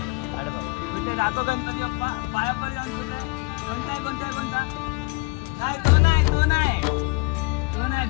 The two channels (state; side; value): quieter; right; 27.7 dB